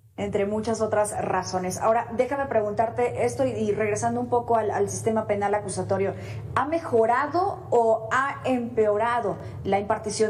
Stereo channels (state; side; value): identical; both; correlation 1.00